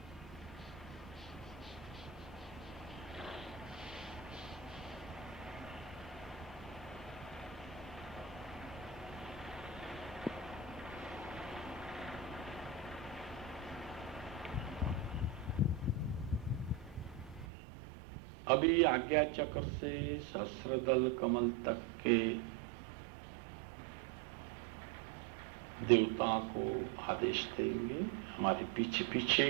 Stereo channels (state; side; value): drops out; left; at 17.4 s